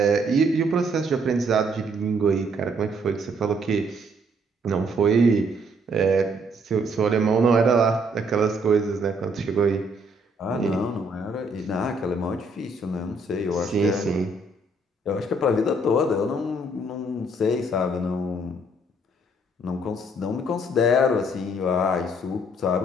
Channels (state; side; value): normal; both; correlation 0.67